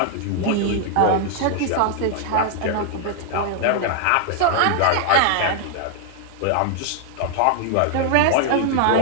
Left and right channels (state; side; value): different; both; correlation 0.00